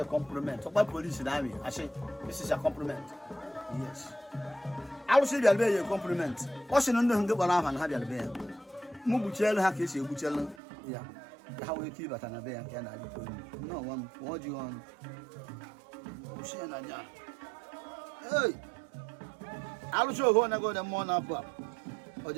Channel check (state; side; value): drops out; left; at 10.6 s